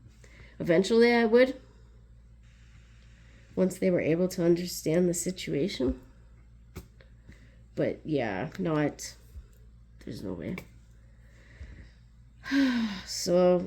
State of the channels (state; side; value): identical; both; correlation 1.00